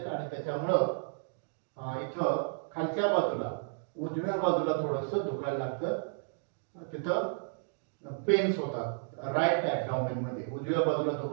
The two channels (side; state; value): left; silent; digital silence